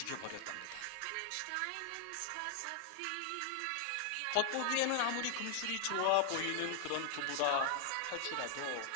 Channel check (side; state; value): both; different; correlation 0.00